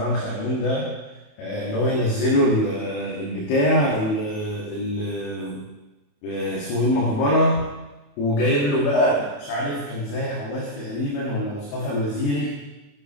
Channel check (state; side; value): late; right; 28 ms